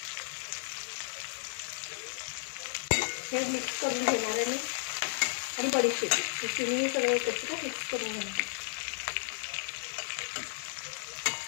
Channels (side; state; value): right; silent; 55 dB below the other